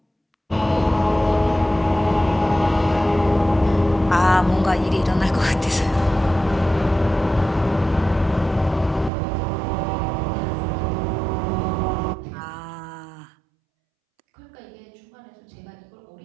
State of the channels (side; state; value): left; drops out; at 9.1 s